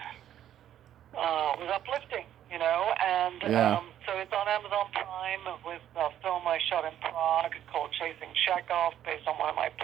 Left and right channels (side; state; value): left; quieter; 11.0 dB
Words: uplifting, and Yeah. so it's on Amazon Prime with a film I shot in Prague called Chasing Chekhov, based on one of my